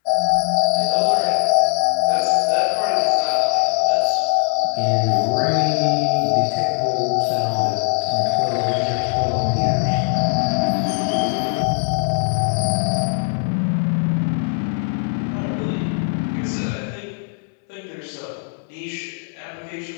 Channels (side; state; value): right; silent; 66 dB below the other